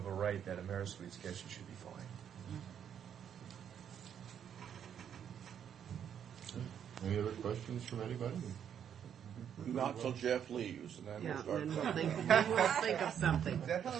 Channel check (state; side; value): quieter; left; 8.8 dB